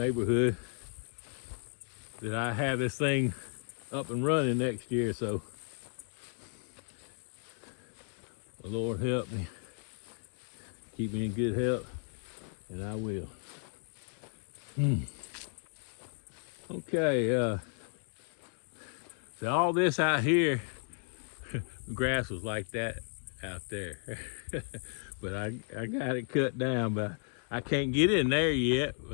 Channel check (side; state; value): right; silent; 55 dB below the other